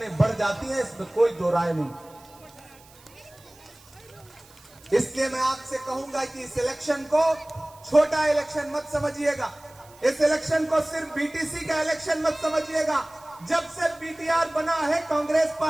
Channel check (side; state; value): right; noise; hiss, 25 dB below the sound